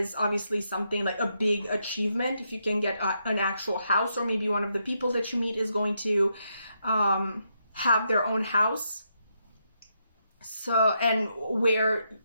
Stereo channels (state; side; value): inverted; both; correlation -0.80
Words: obviously something like a big achievement. If you can get an actual house, or maybe one of the people that you meet is going to have their own house. So, and where